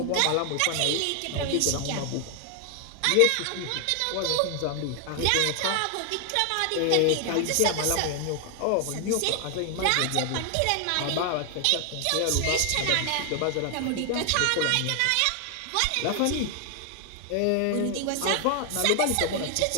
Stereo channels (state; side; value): different; both; correlation 0.00